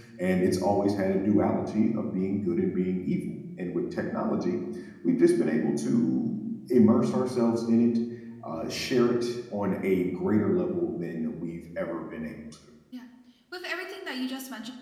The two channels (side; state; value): both; identical; correlation 1.00